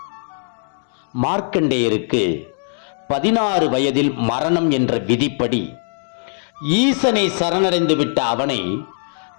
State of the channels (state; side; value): silent; right; 66 dB below the other